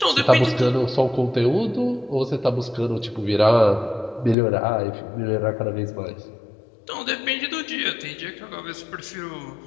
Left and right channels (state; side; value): drops out; right; at 4.4 s